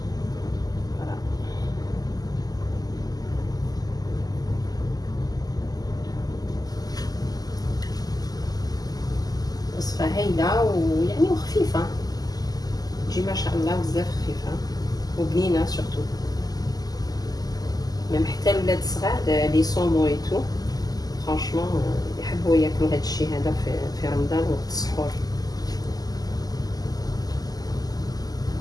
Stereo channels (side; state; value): right; late; 0.18 ms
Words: وصفة هايلة ويعني وخفيفة، تجي ما شاء الله بزاف خفيفة وبنينة سورتو. ميم حتى الولاد الصغار لي صومو اي تو فرانشمون يحبوا ياكلوا هاد الشيء هذا في رمضان وقت السحور.